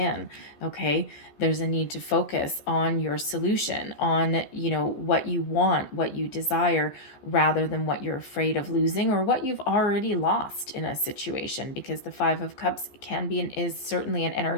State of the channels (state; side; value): late; right; 14 ms